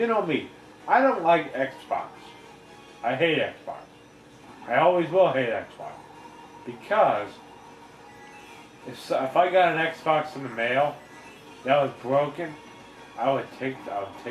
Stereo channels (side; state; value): both; identical; correlation 1.00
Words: know me, I don't like Xbox. I hate Xbox. I always will hate Xbox. Because if I got an Xbox in the mail that was broken, I would take it